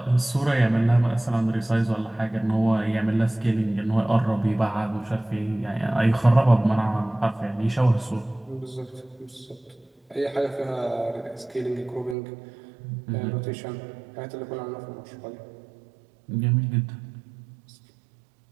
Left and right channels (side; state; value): left; drops out; at 12.2 s